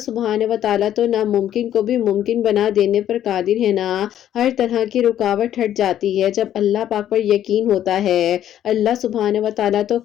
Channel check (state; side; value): quieter; right; 11.2 dB